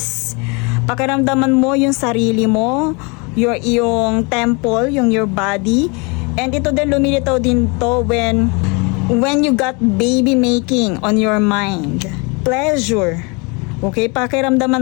Pakiramdaman mo yung sarili mo, yung temple, your body. And ito din lumilitaw din to when you got baby making on your mind. Pleasure. Okay, pakiramdaman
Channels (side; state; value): right; quieter; 30.4 dB